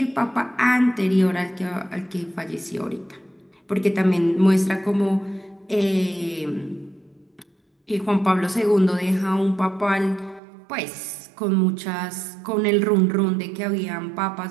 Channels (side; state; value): left; drops out; at 10.4 s